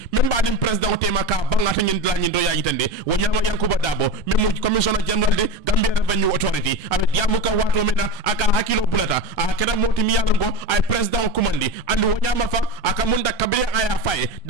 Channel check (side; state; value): right; late; 1.3 ms